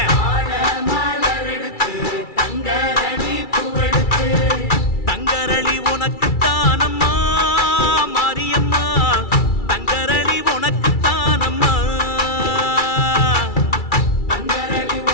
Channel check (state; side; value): late; right; 2.3 ms